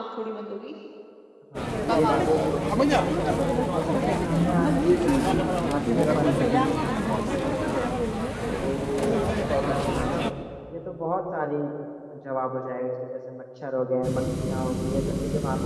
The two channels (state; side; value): identical; both; correlation 1.00